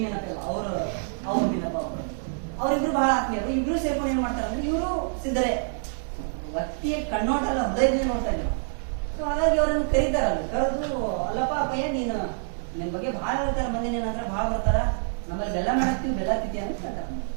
ಮೀನಪ್ಪ ಇಲ್ಲ, ಅವ್ರು ಮೀನಪ್ಪ ಅವ್ರಿಬ್ರು ಬಹಳ ಆತ್ಮೀಯರು. ಇಬ್ರು ಸೇರ್ಕೊಂಡು ಏನ್ ಮಾಡ್ತಾರೆ ಅಂದ್ರೆ, ಇವರು ಸಿದ್ಧರೇ, ವ್ಯಕ್ತಿಯ ಕಣ್ಣೋಟಲ್ಲ ಹೃದಯದಿಂದ ನೋಡ್ತಾ ಇದ್ರು. ಸೊ ಹಾಗಾಗಿ ಅವ್ರನ್ನ ಕರೀತಾರಲ್ಲ, ಕರೆದು ಅಲ್ಲಪ್ಪ ಅಪ್ಪಯ್ಯ ನೀನು ನಿನ್ ಬಗ್ಗೆ ಬಹಳ ಹೇಳ್ತಾರೆ, ಮಂದಿ ಏನಂದ್ರೆ ಬಹಳ ಬರ್ತಾರ, ನಮ್ಮಲ್ಲಿ ಬೆಲ್ಲ ಮಾಡಾಕ್ತಿವಿ, ಬೆಲ್ಲ ತಿಂತೀವಿ ಅಂತ ಹೇಳ್ತಾರೆ.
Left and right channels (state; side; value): silent; left; digital silence